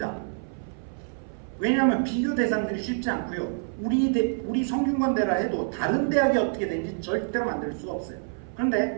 왜냐하면 비교 대상들이 쉽지 않고요. 우리 성균관대라 해도 다른 대학이 어떻게 되는지 절대로 만들 수가 없어요.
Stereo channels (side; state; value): left; silent; 59 dB below the other